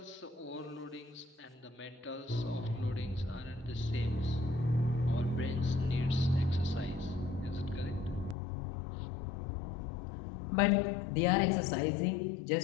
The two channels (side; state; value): right; drops out; at 8.3 s